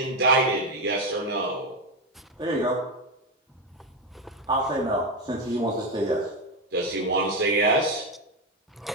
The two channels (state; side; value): normal; both; correlation 0.10